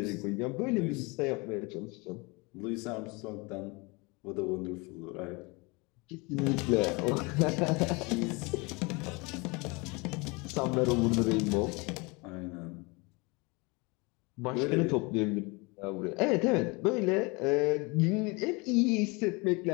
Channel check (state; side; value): quieter; right; 27.4 dB